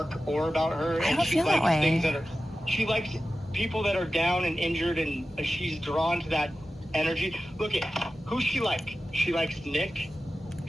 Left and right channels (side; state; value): both; normal; correlation 0.94